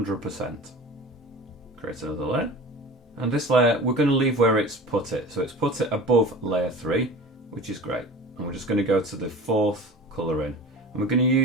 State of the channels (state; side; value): normal; both; correlation 0.37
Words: Create another layer. And this layer, we're going to leave where it's put it. So it's put it above layer 3, which is great. And we're just going to go to the fourth colour in. And we're going to